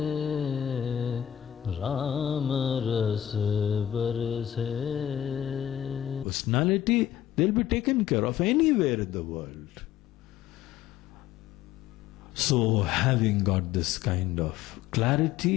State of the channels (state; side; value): quieter; right; 11.4 dB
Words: राम रस बरसे. Personality, they'll be taken care of anywhere in the world. So, having got this kind of